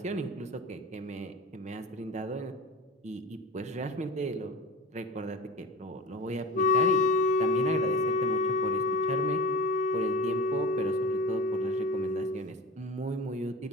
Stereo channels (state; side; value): normal; both; correlation 0.34